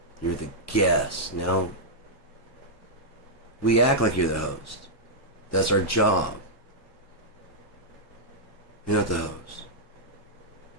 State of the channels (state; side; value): normal; both; correlation -0.09